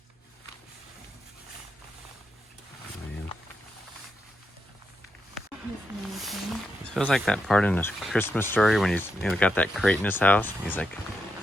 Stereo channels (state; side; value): normal; both; correlation 0.84